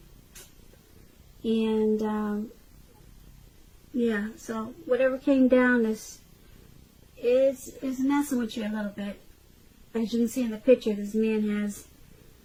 and so whatever came down is messing with you a little bit. As you can see in the picture, this man has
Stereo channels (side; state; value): both; identical; correlation 1.00